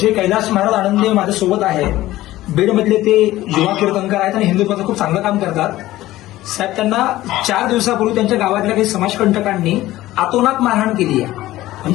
कैलास महाराज आनंदे माझ्यासोबत आहे. बीडमधले ते युवा कीर्तनकार आहेत आणि हिंदुत्वाचं खूप चांगलं काम करतात. साहेब त्यांना 4 दिवसापूर्वी त्यांच्या गावातल्या काही समाजकंटकांनी अतोनात मारहाण केली आहे.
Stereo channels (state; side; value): quieter; right; 16.0 dB